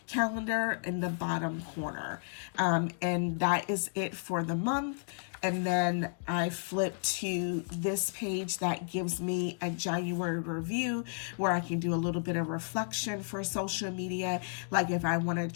calendar in the bottom corner. And that is it for the month. And then I flip to this page that gives me a January review where I can do a little bit of reflection for social media. Like if I want to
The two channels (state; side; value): silent; right; digital silence